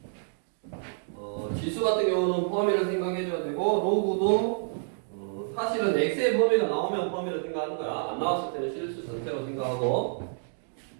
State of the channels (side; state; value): left; silent; digital silence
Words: 지수 같은 경우는 범위를 생각해줘야 되고, 로그도 사실은 x의 범위가 나오면 범위를 생각하는 거야. 안 나왔을 때는 실수 전체로 생각하고,